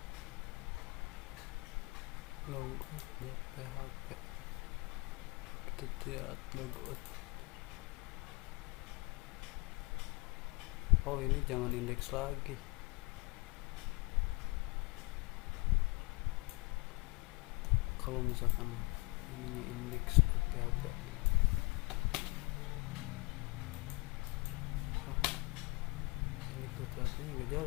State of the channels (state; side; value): quieter; right; 26.8 dB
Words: Logout.php, kita lihat logout. Oh, ini jangan indeks lagi. Kalau misalkan ini indeks.php, ini PHP nya nggak